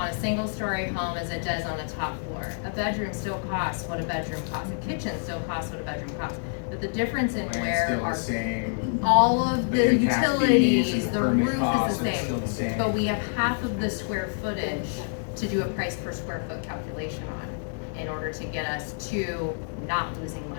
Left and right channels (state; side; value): silent; right; digital silence